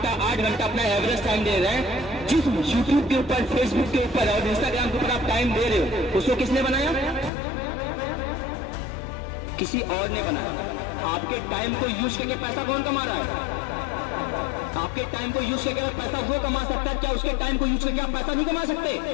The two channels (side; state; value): right; drops out; at 7.3 s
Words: घंटा अपना एवरेज टाइम दे रहे हैं। जिस यूट्यूब के ऊपर, फेसबुक के ऊपर और इंस्टाग्राम के ऊपर आप टाइम दे रहे हो, उसको किसने बनाया? किसी और ने बनाया। आपके टाइम को यूज करके पैसा कौन कमा रहा है? आपके टाइम को यूज करके पैसा वो कमा सकता है। क्या उसके टाइम को यूज करके आप पैसा नहीं कमा